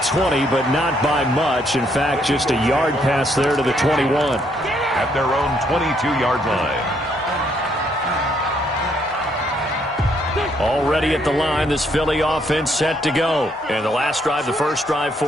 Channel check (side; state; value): both; normal; correlation 0.71